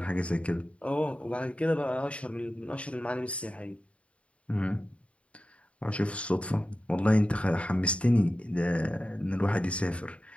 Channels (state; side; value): late; right; 0.062 ms